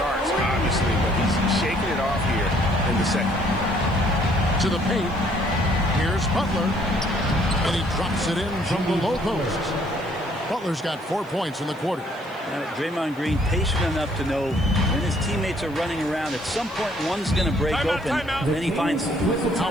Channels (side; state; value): right; noise; hiss, 28 dB below the sound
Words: obviously, but he's shaking it off here in the second. To the paint. Here's Butler. And he drops it in from the low post. Butler's got 4 points in the quarter. Draymond Green patient enough to know when his teammates are running around, at some point one's going to break open, and then he finds it.